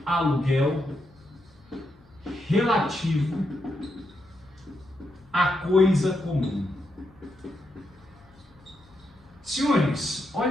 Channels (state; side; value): noise; left; hum, 29 dB below the sound